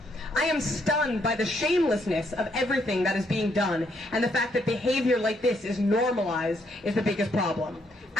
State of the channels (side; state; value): both; normal; correlation 0.73